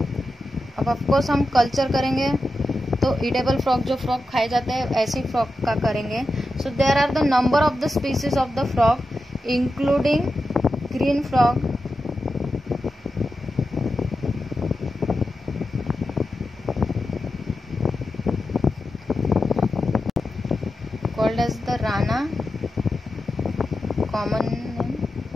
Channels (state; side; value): normal; both; correlation 0.90